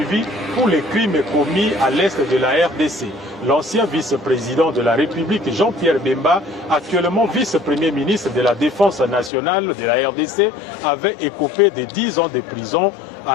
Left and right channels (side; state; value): right; drops out; at 9.3 s